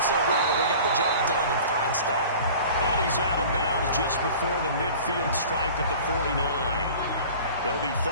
so well that they got the job done in fine style. And he's out of bounds just before the midfield stripe at the 49. It'll be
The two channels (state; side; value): inverted; both; correlation -0.43